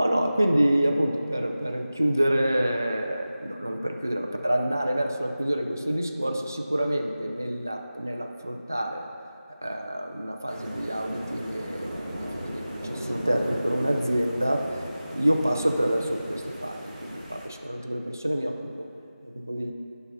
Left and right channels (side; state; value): both; inverted; correlation -0.95